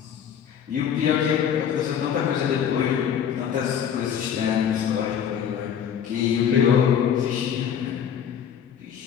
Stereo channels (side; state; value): right; quieter; 8.5 dB